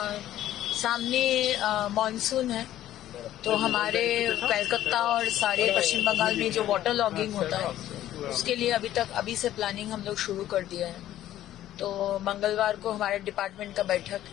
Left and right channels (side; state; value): right; quieter; 13.0 dB